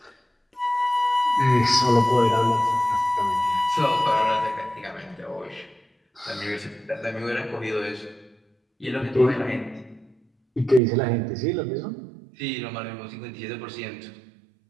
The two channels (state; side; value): drops out; left; at 10.8 s